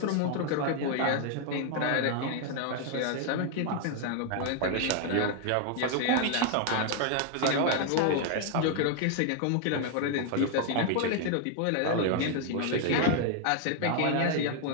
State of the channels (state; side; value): different; both; correlation 0.00